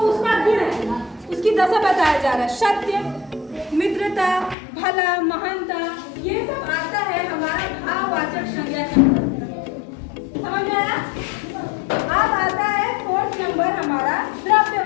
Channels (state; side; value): drops out; right; at 4.5 s